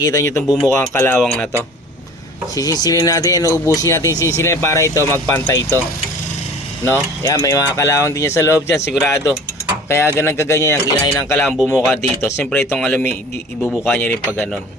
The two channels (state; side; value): normal; both; correlation 0.44